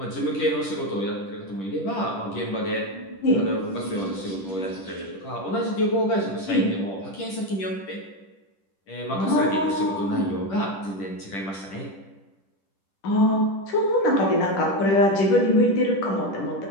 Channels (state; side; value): late; right; 10 ms